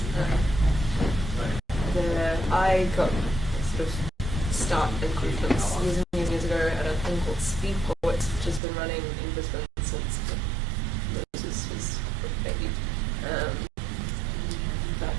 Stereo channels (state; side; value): drops out; left; at 8.6 s